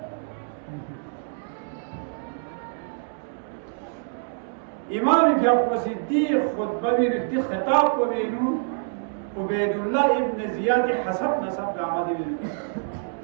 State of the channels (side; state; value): left; silent; digital silence